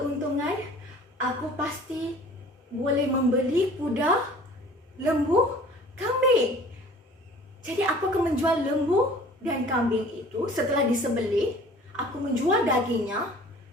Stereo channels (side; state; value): both; normal; correlation 0.48